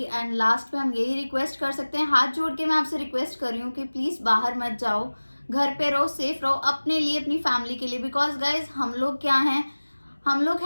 एंड लास्ट पे हम यही रिक्वेस्ट कर सकते हैं, हाथ जोड़ के मैं आपसे रिक्वेस्ट कर रही हूँ कि प्लीज़ बाहर मत जाओ, घर पे रहो, सेफ रहो, अपने लिए, अपनी फैमिली के लिए, बिकॉज गाइज हम लोग क्या हैं, हम लोग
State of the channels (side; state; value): both; inverted; correlation -1.00